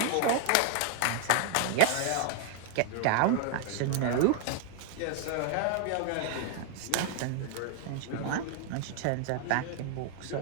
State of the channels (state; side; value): different; both; correlation 0.00